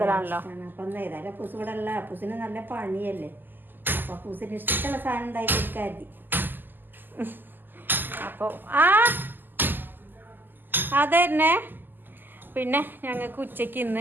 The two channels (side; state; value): left; late; 0.090 ms